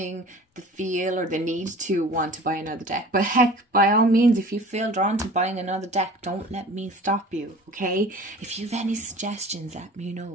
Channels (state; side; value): normal; both; correlation 0.43